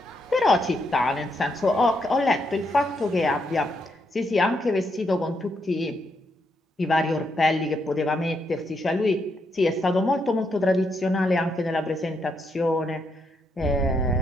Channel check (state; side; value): normal; both; correlation 0.79